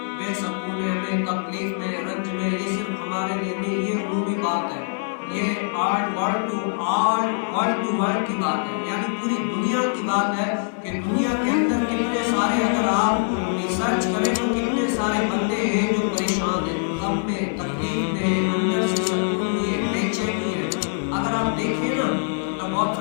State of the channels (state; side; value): silent; right; 63 dB below the other